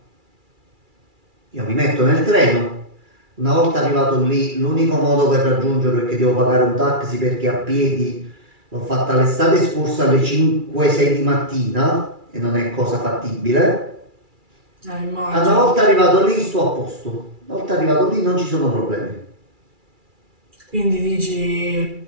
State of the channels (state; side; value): late; left; 2.3 ms